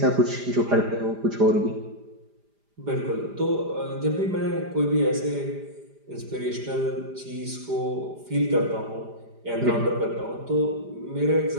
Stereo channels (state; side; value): late; left; 5.0 ms